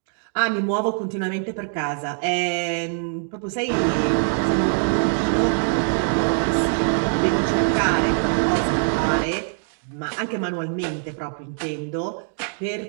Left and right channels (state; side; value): silent; left; 61 dB below the other